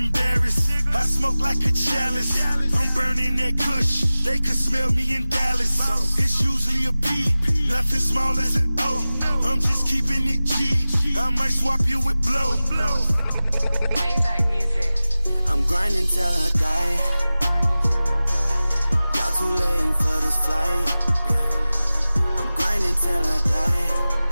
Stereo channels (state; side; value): inverted; both; correlation -0.97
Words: I smoke like a chalice. I'm burning that kush. They could smell me in Dallas. It's usually a P. Nothing small as an O. I'm just keeping it G. I might swap you with blow. Maybach music. I'm grinding till I die. Y'all too late for this flight. I'm grinding till I die.